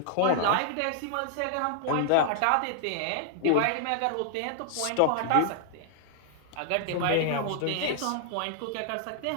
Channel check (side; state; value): both; different; correlation -0.01